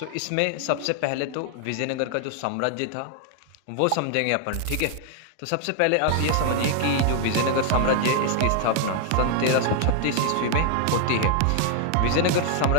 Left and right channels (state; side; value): different; both; correlation 0.00